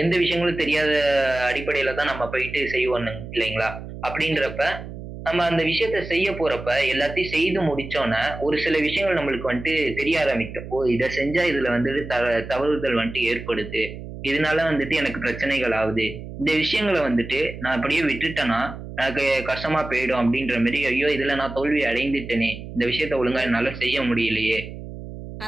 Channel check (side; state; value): right; noise; hum, 11 dB below the sound